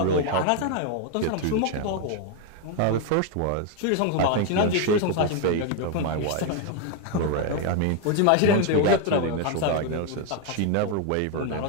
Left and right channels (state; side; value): different; both; correlation 0.01